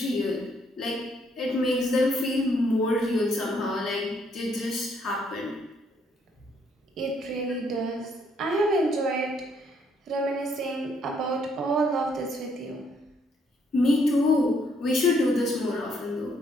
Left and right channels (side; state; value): both; normal; correlation 0.70